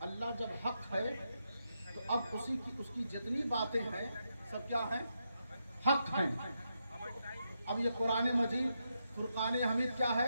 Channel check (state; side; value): inverted; both; correlation -0.83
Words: اللہ جب حق ہے تو اب اس کی جتنی باتیں ہیں سب کیا ہیں؟ حق ہیں۔ اب یہ قرآن مجید فرقان حمید کیا